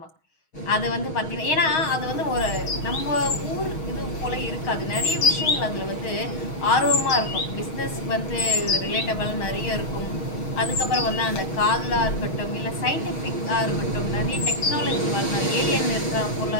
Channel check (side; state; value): right; late; 6.3 ms